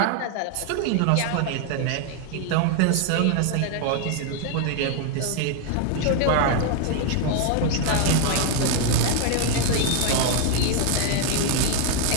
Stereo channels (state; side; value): different; both; correlation 0.01